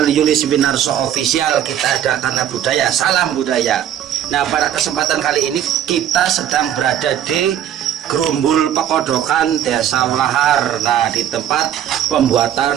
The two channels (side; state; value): left; quieter; 10.5 dB